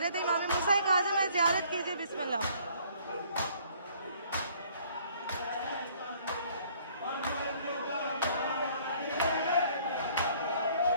इमाम हुसैन आज़म है, ज़ियारत कीजिए। बिस्मिल्लाह।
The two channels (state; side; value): inverted; both; correlation -0.59